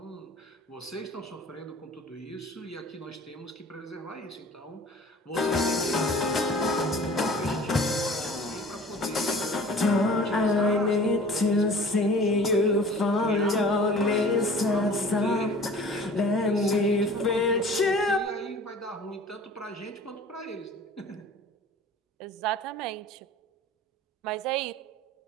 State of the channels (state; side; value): normal; both; correlation 0.45